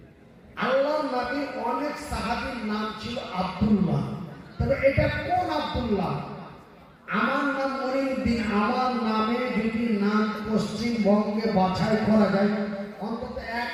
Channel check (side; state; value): both; identical; correlation 1.00